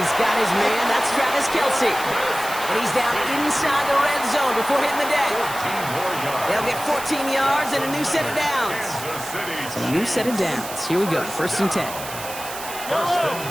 got his man, that's Travis Kelce. And he's down inside the red zone before hitting the deck. They'll get 14 yards and a new set of downs. So a new set of downs. Here we go, 1st and 10. 1st and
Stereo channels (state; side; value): noise; right; hiss, 10 dB below the sound